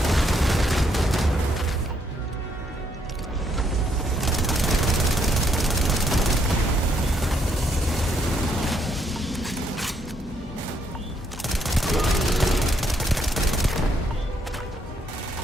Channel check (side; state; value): both; normal; correlation 0.73